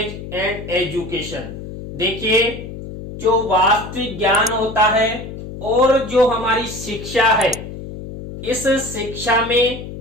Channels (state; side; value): noise; left; hum, 11 dB below the sound